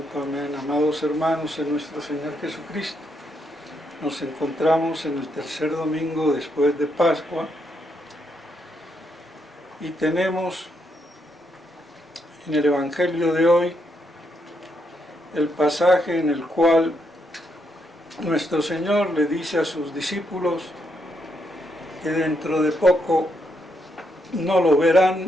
Amén. Amados hermanos en nuestro Señor Jesucristo, nos encontramos en el tercer domingo después de Pascua y tenemos en el Evangelio de hoy el pasaje en el cual nuestro Señor le dice a sus discípulos que dentro de poco no lo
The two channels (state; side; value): normal; both; correlation 0.78